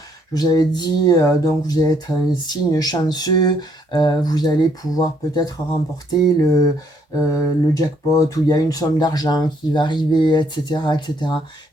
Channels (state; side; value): normal; both; correlation 0.68